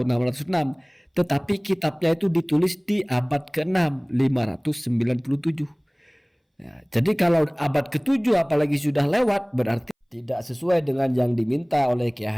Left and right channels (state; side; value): identical; both; correlation 1.00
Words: 606. Tetapi kitabnya itu ditulis di abad ke-6, 597. Ya, jadi kalau abad ke-7 apalagi sudah lewat, berarti tidak sesuai dengan yang diminta oleh Kiai